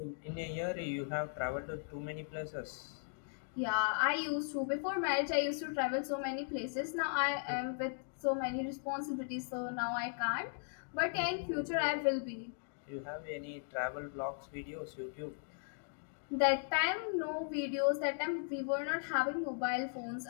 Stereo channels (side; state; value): right; silent; digital silence